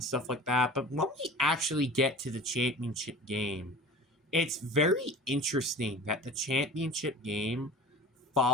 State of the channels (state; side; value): normal; both; correlation 0.39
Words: stuff like that. But when we actually get to the championship game, it's very interesting that the championship game